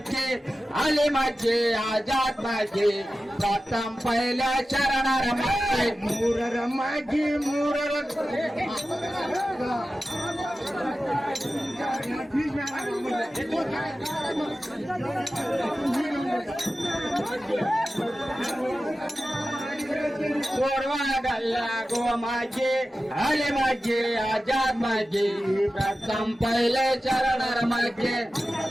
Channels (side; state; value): both; normal; correlation 0.94